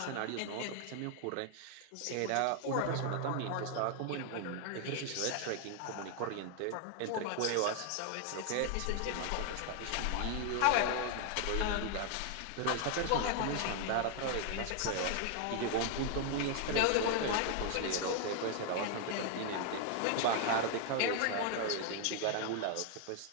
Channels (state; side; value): different; both; correlation 0.00